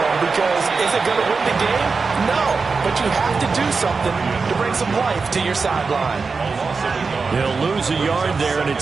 because is it going to win the game? No, but you have to do something to bring some life to your sideline. He'll lose a yard there, and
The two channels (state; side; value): quieter; left; 4.6 dB